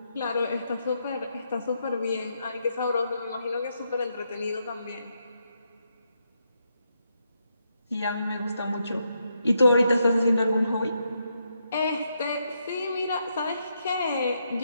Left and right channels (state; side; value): inverted; both; correlation -0.80